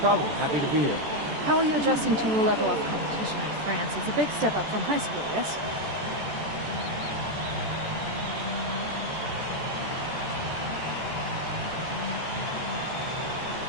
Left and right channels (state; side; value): late; left; 14 ms